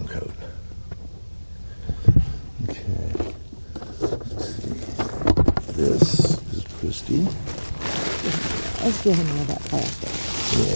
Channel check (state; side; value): inverted; both; correlation -1.00